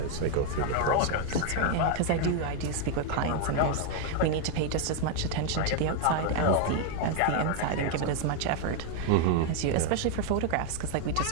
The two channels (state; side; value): different; both; correlation 0.00